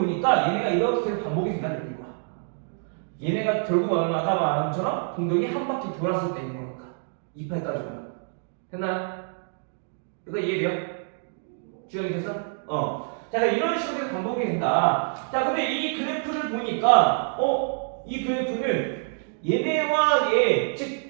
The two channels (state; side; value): silent; left; 61 dB below the other